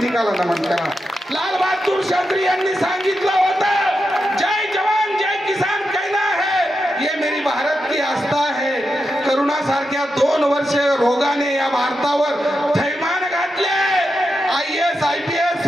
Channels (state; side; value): normal; both; correlation 0.87